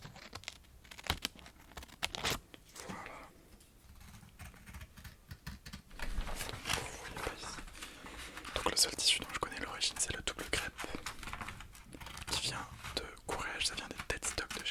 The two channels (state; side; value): identical; both; correlation 1.00